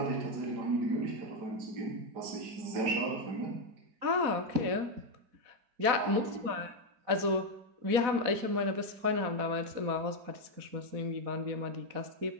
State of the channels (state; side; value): late; left; 4.1 ms